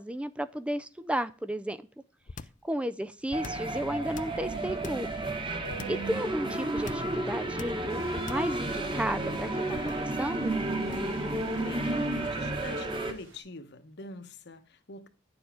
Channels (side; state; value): both; normal; correlation 0.68